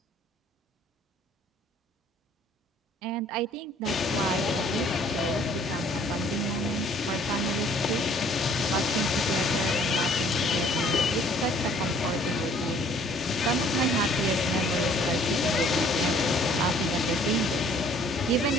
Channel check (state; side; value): normal; both; correlation 0.58